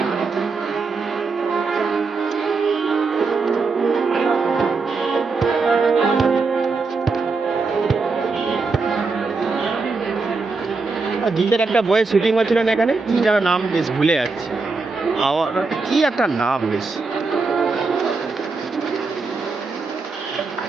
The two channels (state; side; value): quieter; left; 4.2 dB